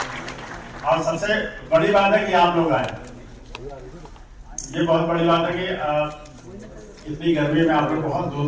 और सबसे बड़ी बात है कि आप लोग आए, ये बहुत बड़ी बात है कि इतनी गर्मी में आप लोग बहुत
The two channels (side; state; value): both; identical; correlation 1.00